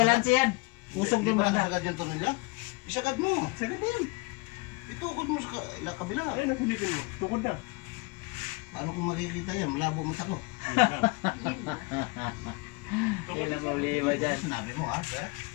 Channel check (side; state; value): right; quieter; 26.4 dB